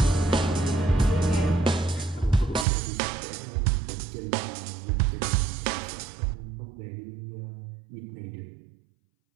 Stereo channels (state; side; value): drops out; left; at 2.7 s